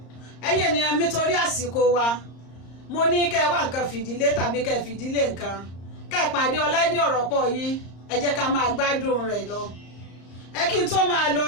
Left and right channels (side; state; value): right; late; 34 ms